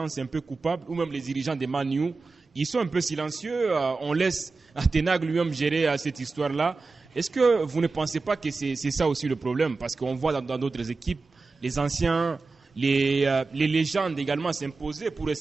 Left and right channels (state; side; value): quieter; left; 4.0 dB